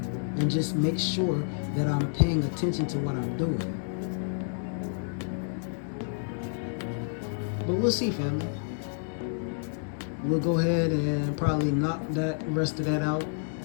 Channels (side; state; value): right; silent; digital silence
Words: and just make sure that I'm paying attention to what I'm doing. But we'll see, family. We'll go ahead and probably knock that rest of that out